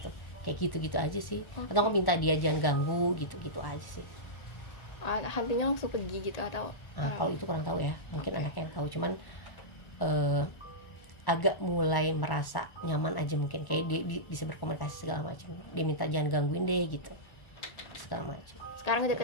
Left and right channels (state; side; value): late; right; 1.1 ms